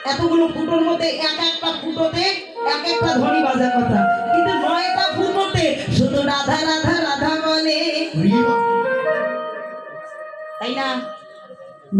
এতগুলো ফুটোর মধ্যে এক একটা ফুটোতে এক একটা ধ্বনি বাজা কথা, কিন্তু নয়টা ফুটোতে শুধু রাধা রাধা রাধা বলে, তাই না?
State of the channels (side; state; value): both; identical; correlation 1.00